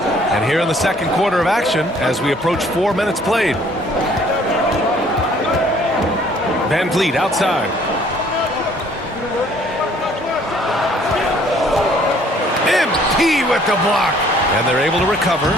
And here in the second quarter of action, as we approach 4 minutes played. Van Vliet outside. MP with the block. And they're able to recover.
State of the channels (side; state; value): both; normal; correlation 0.59